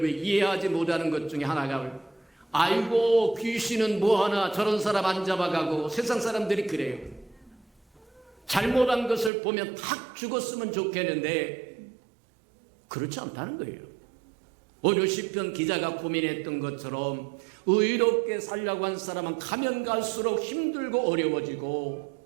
이해하지 못하는 것 중에 하나가, 아이고 귀신은 뭐하나 저런 사람 안 잡아가고, 세상 사람들이 그래요. 잘못한 것을 보면 탁 죽었으면 좋겠는데 그렇지 않다는 거예요. 오늘 시편 기자가 고민했던 것처럼 의롭게 살려고 한 사람은 가면 갈수록 힘들고 어려워지고,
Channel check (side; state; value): left; drops out; at 9.3 s